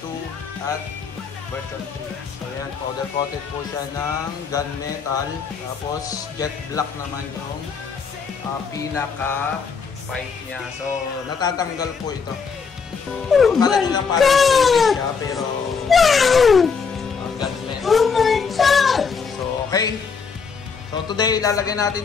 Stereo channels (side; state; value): right; quieter; 5.7 dB